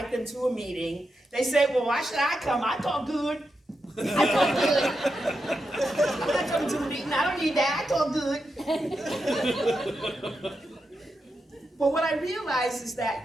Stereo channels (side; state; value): both; normal; correlation 0.86